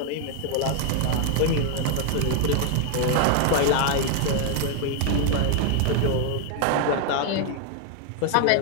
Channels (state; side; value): different; both; correlation 0.00